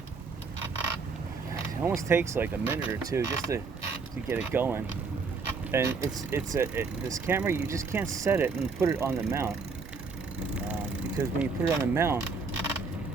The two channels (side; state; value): left; quieter; 4.6 dB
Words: It almost takes like a minute or two just to get it going. And this camera, you just can't set it and put it on the mount, because when you put it on the mount,